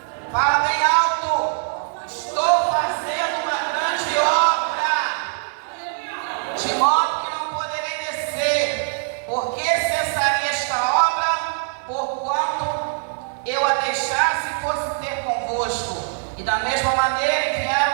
Fala bem alto: estou fazendo uma grande obra, de modo que não poderei descer, porque cessaria esta obra, porquanto eu a deixasse e fosse ter convosco. E da mesma maneira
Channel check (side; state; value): left; silent; 64 dB below the other